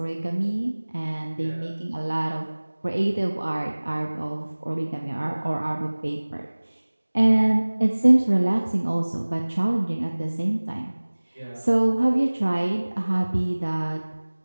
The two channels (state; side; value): inverted; both; correlation -1.00